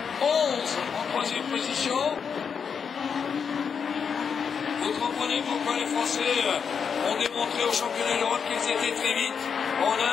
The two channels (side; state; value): right; quieter; 6.6 dB